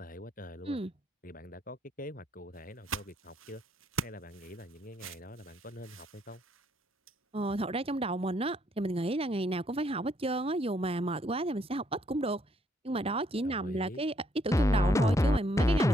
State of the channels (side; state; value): both; normal; correlation 0.71